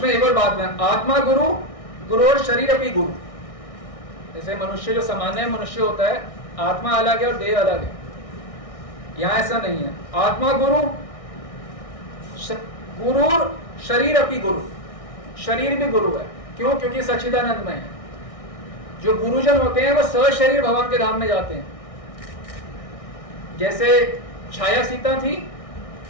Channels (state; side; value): late; right; 1.6 ms